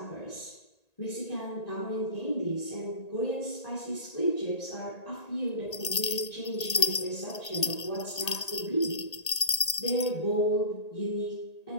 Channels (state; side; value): late; right; 1.8 ms